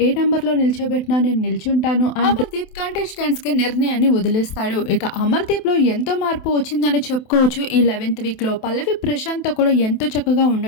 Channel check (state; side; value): late; right; 27 ms